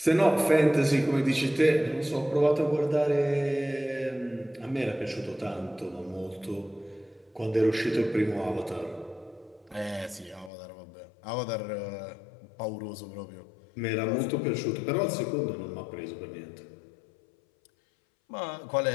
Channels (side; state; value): right; drops out; at 10.5 s